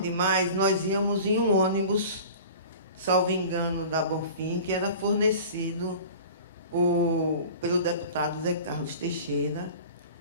demais, nós íamos em um ônibus, salvo engano, da Bonfim, que era fornecido pelo deputado Zé Carlos Teixeira,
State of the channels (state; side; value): inverted; both; correlation -0.40